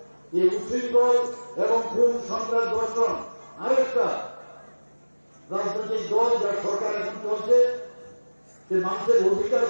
এই উচ্ছৃঙ্খল এবং খুন সন্ত্রাস ধর্ষণ আরেকটা রাজনৈতিক দল যার সরকার এখন চলছে, যে মানুষের অধিকার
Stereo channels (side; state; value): both; inverted; correlation -1.00